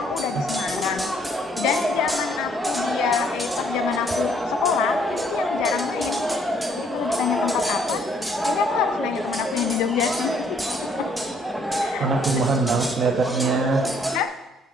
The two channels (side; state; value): both; normal; correlation 0.65